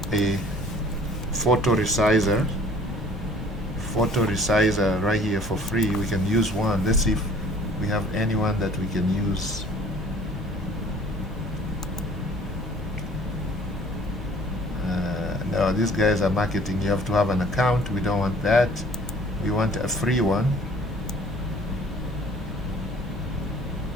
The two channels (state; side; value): normal; both; correlation 0.54